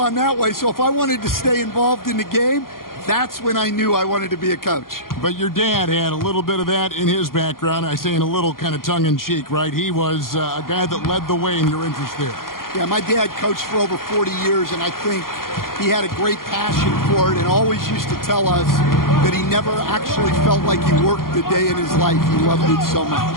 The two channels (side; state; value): right; late; 0.92 ms